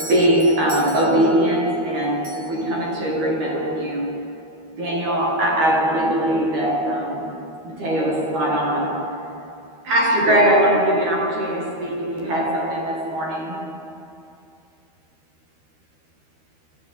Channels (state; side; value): late; left; 13 ms